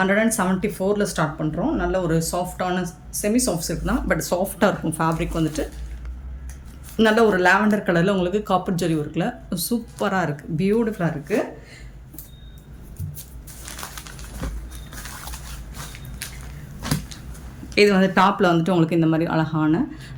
ஸ்டார்ட் பண்ணுறோம். நல்ல ஒரு சாஃப்டான செமி சாஃப்ட் சில்க் தான், பட் சாஃப்டாக இருக்கும். ஃபேப்ரிக் வந்துட்டு நல்ல ஒரு லாவெண்டர் கலரில் உங்களுக்கு காப்பர் ஜரி ஒர்க்கில் சூப்பராக இருக்குது, பியூட்டிஃபுல்லாக இருக்குது. இது வந்து டாப்பில் வந்துட்டு உங்களுக்கு இந்த மாதிரி அழகான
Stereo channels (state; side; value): identical; both; correlation 1.00